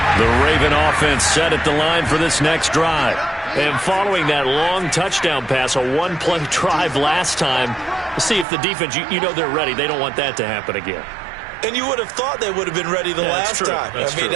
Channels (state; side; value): drops out; left; at 8.5 s